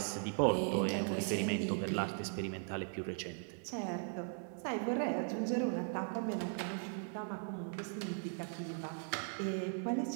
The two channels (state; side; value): silent; left; 52 dB below the other